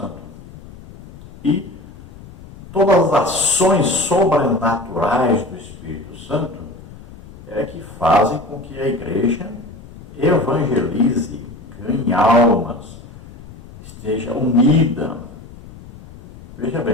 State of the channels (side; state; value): left; noise; rumble, 18 dB below the sound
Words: E todas as ações sobrenaturais do Espírito Santo é que fazem com que a igreja evangelize, ganhe almas, esteja unida. Veja